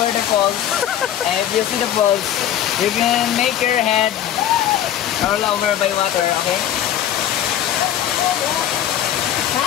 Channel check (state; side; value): quieter; right; 10.9 dB